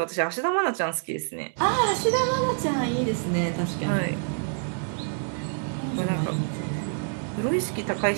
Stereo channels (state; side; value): silent; left; digital silence